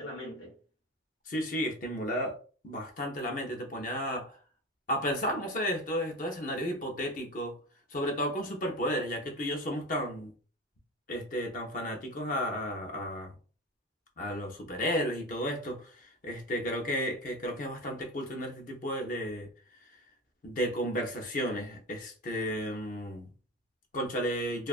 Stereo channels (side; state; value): both; normal; correlation 0.28